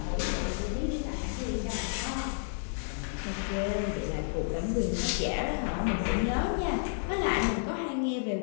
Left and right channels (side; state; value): right; silent; digital silence